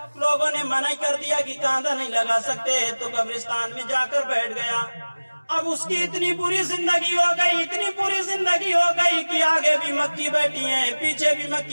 لوگوں نے منع کر دیا کہ کاندھا نہیں لگا سکتے تو قبرستان میں جا کر بیٹھ گیا۔ اب اس کی اتنی بری زندگی ہو گئی، اتنی بری زندگی ہو گئی کہ آگے بھی مکی بیٹھی ہیں، پیچھے بھی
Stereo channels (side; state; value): both; inverted; correlation -1.00